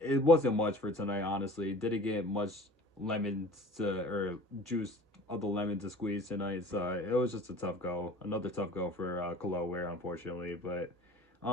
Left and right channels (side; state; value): both; normal; correlation 0.44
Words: wasn't much for tonight, honestly. Didn't get much lemons to, or juice of the lemon to squeeze tonight, so it was just a tough go. Another tough go for Khalil Ware, unfortunately, but